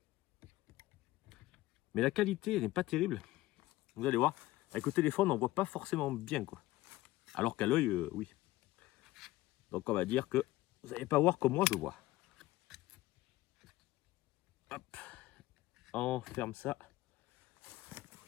Mais la qualité, elle n'est pas terrible. Vous allez voir, avec le téléphone, on ne voit pas forcément bien, quoi. Alors qu'à l'œil, oui. Donc on va dire que vous n'allez pas voir comme moi je vois. Hop. On ferme ça.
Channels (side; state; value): right; quieter; 17.3 dB